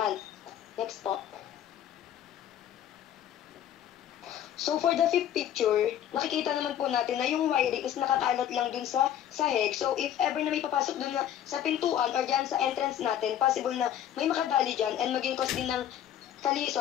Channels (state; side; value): quieter; right; 10.7 dB